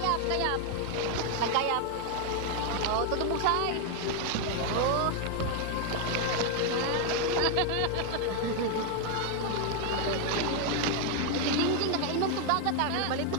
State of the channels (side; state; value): both; different; correlation 0.01